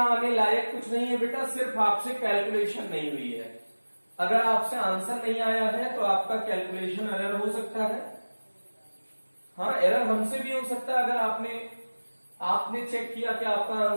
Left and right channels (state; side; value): inverted; both; correlation -1.00